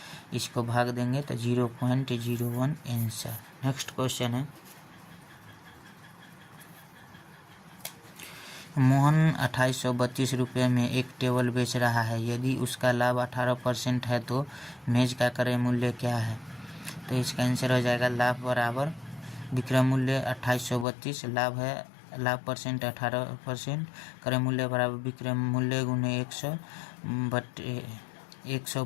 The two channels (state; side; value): drops out; right; at 20.9 s